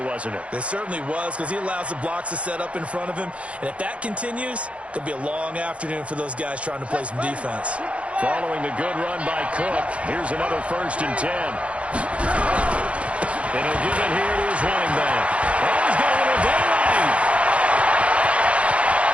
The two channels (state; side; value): late; left; 0.062 ms